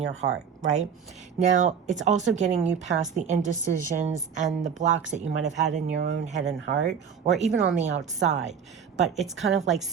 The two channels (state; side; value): quieter; left; 7.1 dB